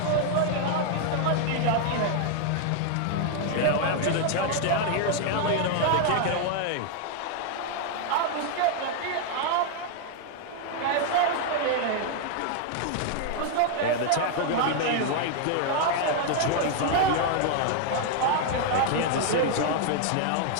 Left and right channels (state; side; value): different; both; correlation 0.00